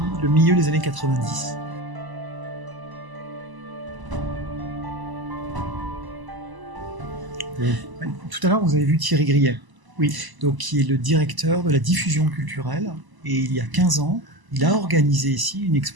le milieu des années 90. Tout à l'heure, vous avez vu Thierry Grillet, Oui. donc, qui est le directeur de la diffusion culturelle. Et il y a 15 ans, il a organisé ici une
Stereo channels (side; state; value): left; late; 1.0 ms